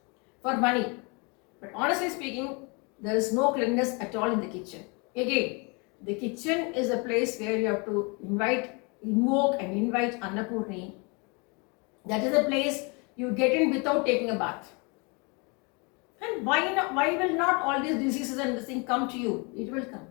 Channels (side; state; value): right; quieter; 31.0 dB